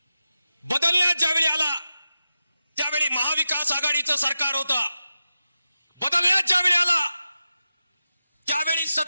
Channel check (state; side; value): inverted; both; correlation -0.91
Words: बदलण्यात ज्यावेळी आला त्यावेळी महाविकास आघाडीचं सरकार होतं. बदलण्यात ज्यावेळी आला त्यावेळी